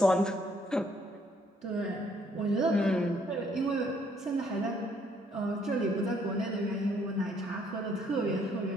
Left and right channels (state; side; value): normal; both; correlation 0.67